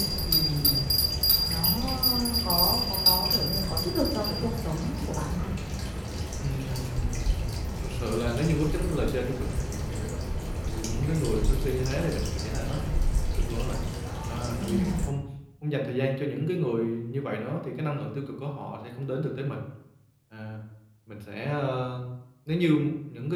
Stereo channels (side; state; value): both; identical; correlation 1.00